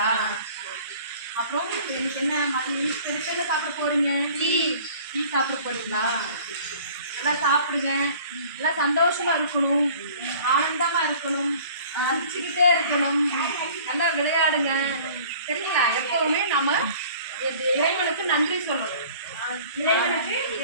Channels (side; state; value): both; inverted; correlation -0.49